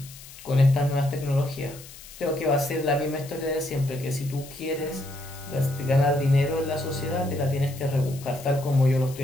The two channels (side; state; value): left; noise; hiss, 17 dB below the sound